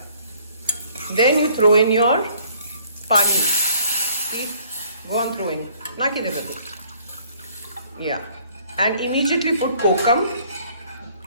Then you throw in your pani. See? Go on throwing. Yeah. And immediately put kokam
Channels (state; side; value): inverted; both; correlation -0.58